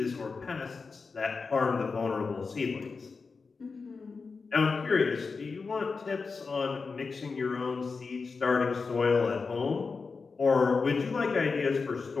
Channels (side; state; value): right; quieter; 4.6 dB